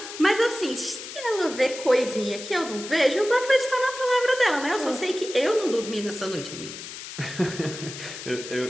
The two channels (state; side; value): noise; left; hiss, 11 dB below the sound